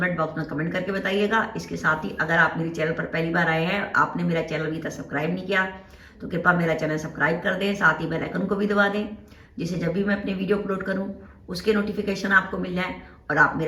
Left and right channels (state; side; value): identical; both; correlation 1.00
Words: बॉक्स में कमेंट करके बताइएगा। इसके साथ ही अगर आप मेरे चैनल पर पहली बार आए हैं, आपने मेरा चैनल अभी तक सब्सक्राइब नहीं किया तो कृपया मेरा चैनल सब्सक्राइब कर दें, साथ ही बेल आइकन को भी दबा दें, जिससे जब भी मैं अपने वीडियो अपलोड करूं उसके नोटिफिकेशन आपको मिल जाए और आप